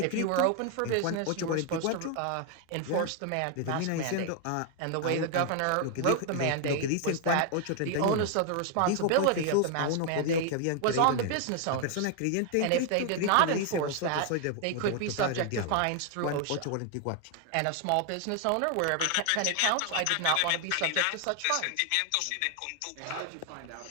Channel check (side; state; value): both; different; correlation 0.00